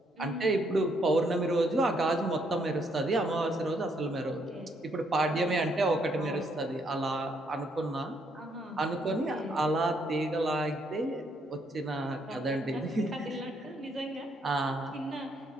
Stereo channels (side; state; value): both; normal; correlation 0.72